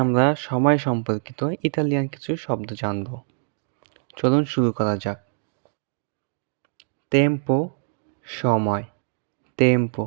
সময় সম্পর্কিত ইতালিয়ান কিছু শব্দ জানব। চলুন শুরু করা যাক। টেম্পো সময়,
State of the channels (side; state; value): left; silent; digital silence